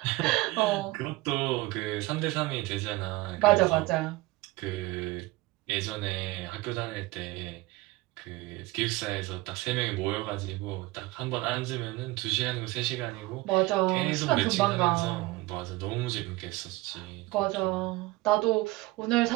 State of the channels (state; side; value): quieter; left; 20.5 dB